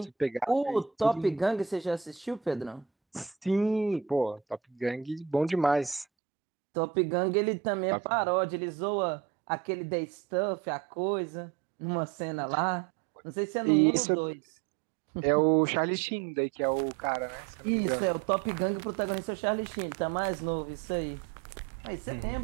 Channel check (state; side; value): drops out; left; at 6.1 s